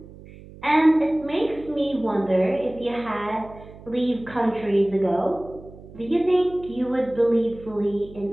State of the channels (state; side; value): noise; right; hum, 19 dB below the sound